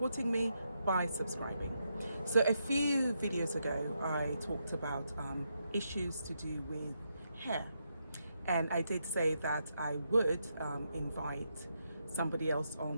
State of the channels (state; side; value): inverted; both; correlation -0.82